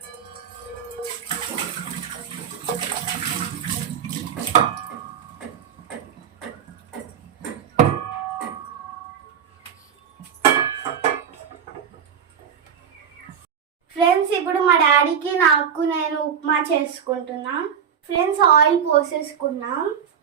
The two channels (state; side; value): quieter; left; 7.9 dB